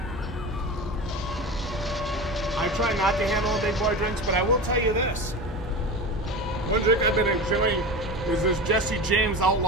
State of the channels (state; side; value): normal; both; correlation 0.28